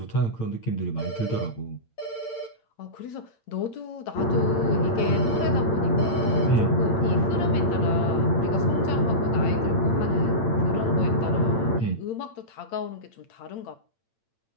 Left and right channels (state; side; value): late; right; 8.8 ms